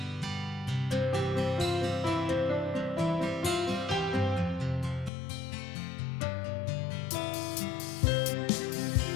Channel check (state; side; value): drops out; right; at 5.1 s